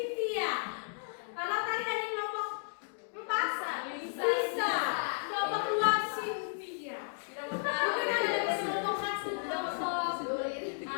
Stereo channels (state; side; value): silent; right; digital silence